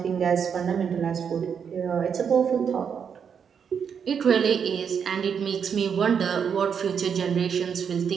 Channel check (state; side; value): quieter; left; 7.1 dB